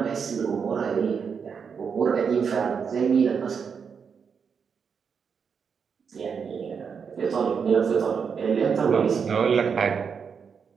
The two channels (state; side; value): quieter; left; 6.3 dB